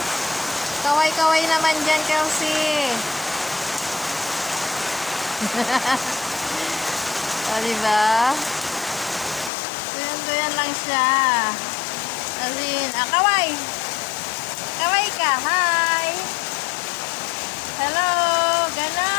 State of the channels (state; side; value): drops out; right; at 9.5 s